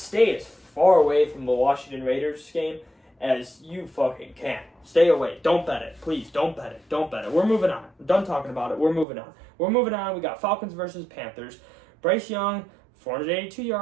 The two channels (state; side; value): drops out; left; at 9.1 s